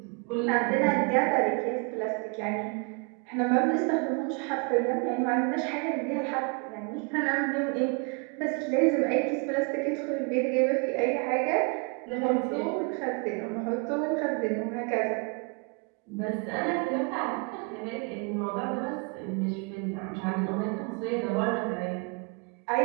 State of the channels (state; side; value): quieter; left; 33.7 dB